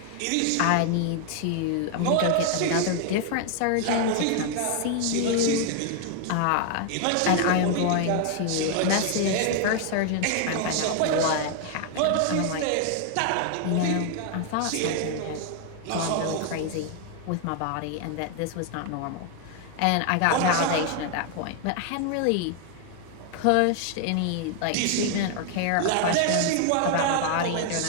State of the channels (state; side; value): different; both; correlation 0.00